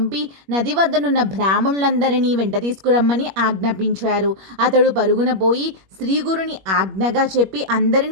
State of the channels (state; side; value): late; left; 21 ms